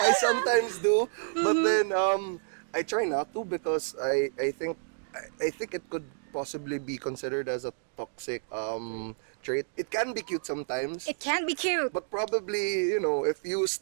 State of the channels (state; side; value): silent; left; digital silence